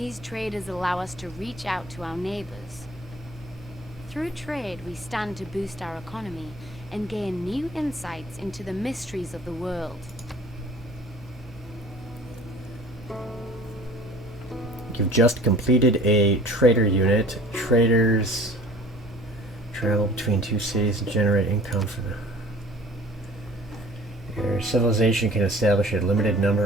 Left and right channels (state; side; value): noise; right; hum, 25 dB below the sound